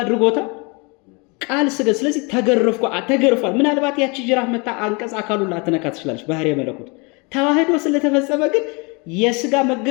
ቃል ስጋ። ስለዚህ ተገርፏል። ምናልባት ያቺ ጅራፍ መታ አንቀጽ አካሉን ላትነካ ትችላለች፣ ባህሪ መለኮት። ተዋህዶ ስለተፈጸመ ግን የስጋ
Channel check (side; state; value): right; quieter; 30.0 dB